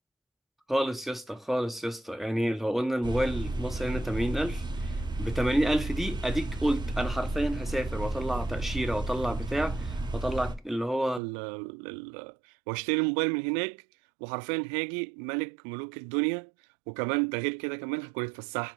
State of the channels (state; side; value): drops out; left; at 11.2 s